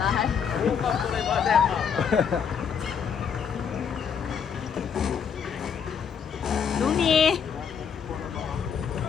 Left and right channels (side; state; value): right; quieter; 7.1 dB